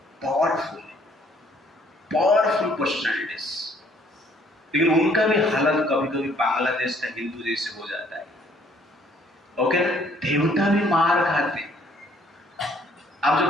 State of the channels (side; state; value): both; normal; correlation 0.62